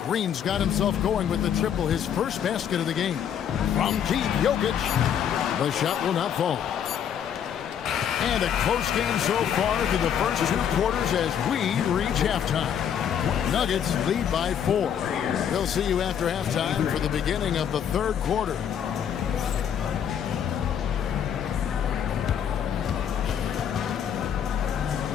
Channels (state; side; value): quieter; right; 8.7 dB